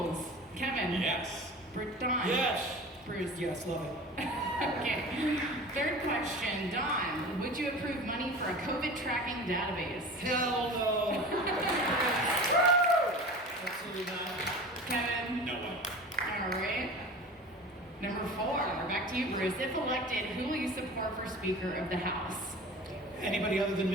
Kevin? Yes. Don? Yes. Bruce? Yes, love it. Okay. Third question, Don. Would you approve money for a COVID tracking database? Hell no. Absolutely not. Kevin? No way. All right. Number 4, back to you, Bruce. If elected, who will you support for Speaker of the House? Anybody other than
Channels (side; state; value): both; normal; correlation 0.36